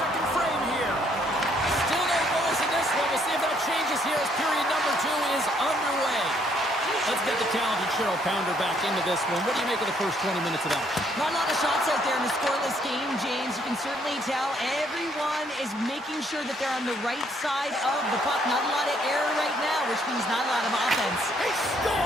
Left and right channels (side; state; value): both; normal; correlation 0.68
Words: frame here. Still no goals in this one. We'll see if that changes here as period number 2 is underway. Let's get the talented Cheryl Pounder back into this one. What do you make of the first 20 minutes of that? Not a lot of shots out there in a scoreless game, James. You can certainly tell everyone is making sure that they're on the right side of the puck. Not a lot of error right now, which means not a lot of offense. He